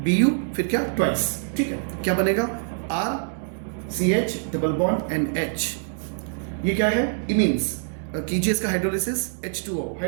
फिर क्या ट्वाइस, ठीक है। क्या बनेगा R CH double bond NH, ये क्या है इमीन्स। कीजिए इसका हाइड्रोलिसिस, H2O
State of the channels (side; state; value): left; silent; 62 dB below the other